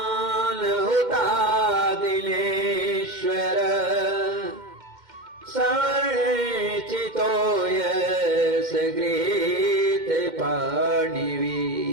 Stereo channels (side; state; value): left; late; 2.1 ms